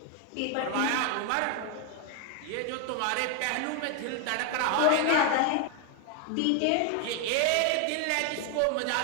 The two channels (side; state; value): both; different; correlation 0.01